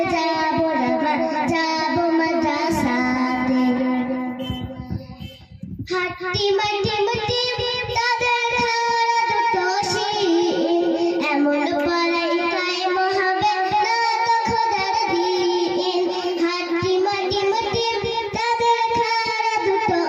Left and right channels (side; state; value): both; identical; correlation 1.00